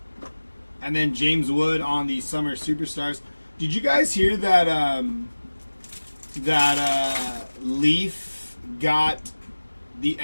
And then James Wood on the Summer Superstars. Did you guys hear that Leaf got the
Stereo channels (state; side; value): inverted; both; correlation -1.00